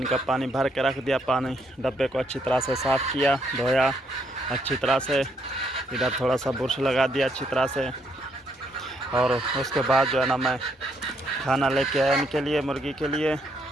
पानी भर के रख दिया। पानी डब्बे को अच्छी तरह से साफ़ किया, धोया अच्छी तरह से। इधर थोड़ा सा बुरश लगा दिया अच्छी तरह से। और उसके बाद जो है ना मैं खाना लेके आया इनके लिए, मुर्गी के लिए।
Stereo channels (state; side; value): normal; both; correlation 0.73